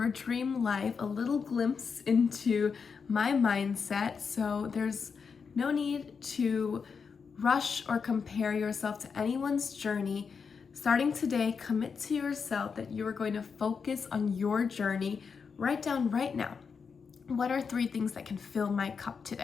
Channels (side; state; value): right; quieter; 5.8 dB